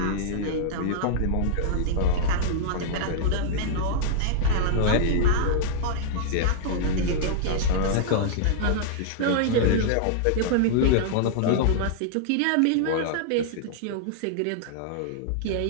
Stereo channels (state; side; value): different; both; correlation -0.01